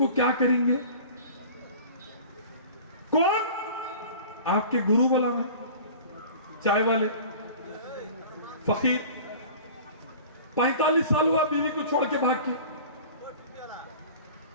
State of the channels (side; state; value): both; inverted; correlation -0.41